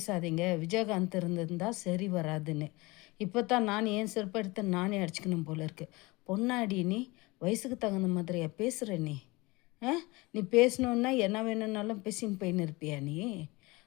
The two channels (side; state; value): right; quieter; 23.4 dB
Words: விஜயகாந்த் இருந்திருந்தா சரி வராதுன்னு. இப்போ தான் நான் என் செருப்பு எடுத்து நானே அடிச்சுக்கணும் போல இருக்கு. பொன்னாடி நீ வயசுக்கு தகுந்த மாதிரியா பேசுகிற நீ? நீ பேசணுன்னா என்ன வேணும்னாலும் பேசின்னு போயின்னு இருப்பியா நீ?